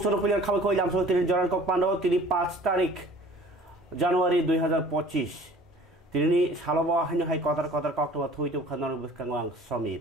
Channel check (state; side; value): normal; both; correlation 0.49